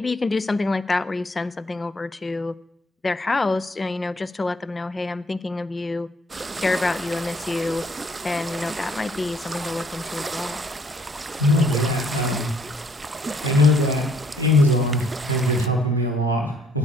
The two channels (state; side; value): normal; both; correlation 0.65